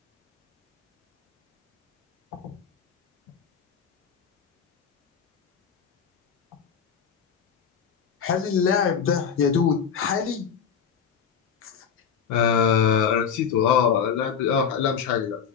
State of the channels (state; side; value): quieter; right; 7.2 dB